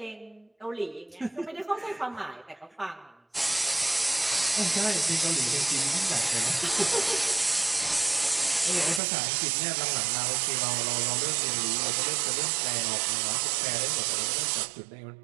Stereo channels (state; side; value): drops out; left; at 9.0 s